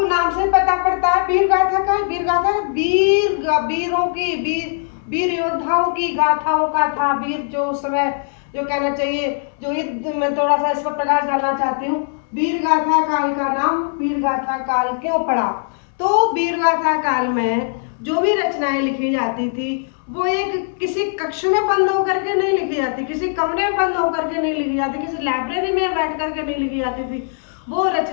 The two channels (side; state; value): right; silent; digital silence